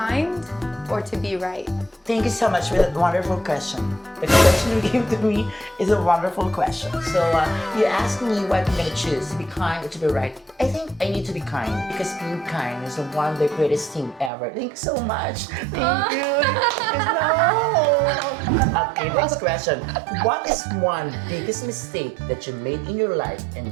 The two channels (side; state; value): left; drops out; at 14.3 s